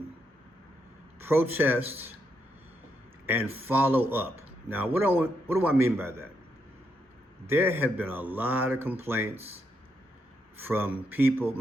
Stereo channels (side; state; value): both; normal; correlation 0.79